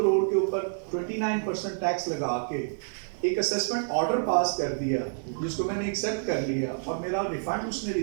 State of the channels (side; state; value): left; silent; digital silence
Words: के ऊपर 29% टैक्स लगा के एक असेसमेंट ऑर्डर पास कर दिया जिसको मैंने एक्सेप्ट कर लिया और मेरा रिफंड उसने